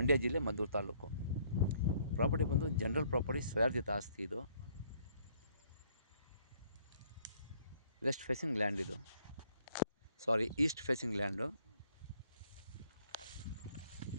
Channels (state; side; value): inverted; both; correlation -0.64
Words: ಜಿಲ್ಲೆ, ಮದ್ದೂರು ತಾಲೂಕು. ಪ್ರಾಪರ್ಟಿ ಬಂದು ಜನರಲ್ ಪ್ರಾಪರ್ಟಿ, ಸ್ವಯಾರ್ಜಿತ ಆಸ್ತಿ. ಇದು ವೆಸ್ಟ್ ಫೇಸಿಂಗ್ ಲ್ಯಾಂಡ್. ಇದು East facing land.